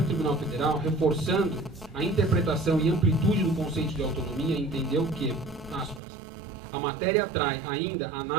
Tribunal Federal, reforçando a interpretação e amplitude do conceito de autonomia, entendeu que, aspas, a matéria atrai ainda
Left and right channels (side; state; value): left; drops out; at 6.0 s